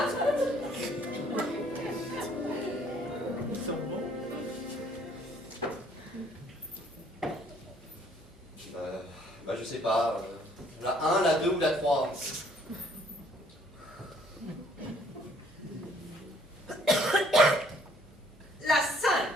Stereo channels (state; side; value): normal; both; correlation 0.62